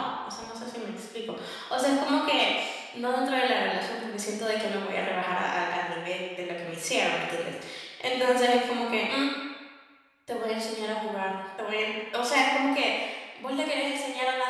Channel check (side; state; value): both; identical; correlation 1.00